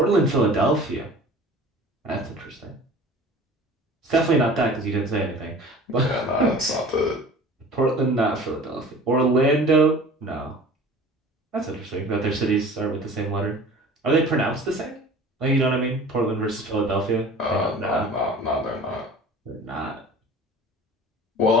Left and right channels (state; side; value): normal; both; correlation 0.43